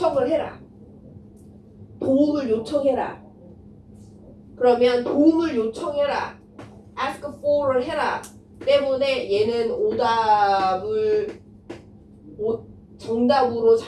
해라. 도움을 요청해라. 그러면 도움을 요청해라. ask for를 해라. 때문에 얘는 오답을 정답으로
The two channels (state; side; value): identical; both; correlation 1.00